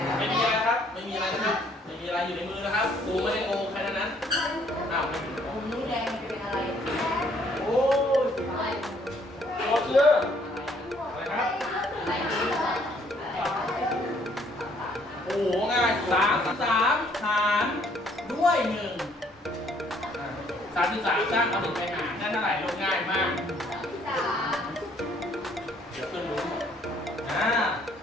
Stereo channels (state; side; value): normal; both; correlation 0.64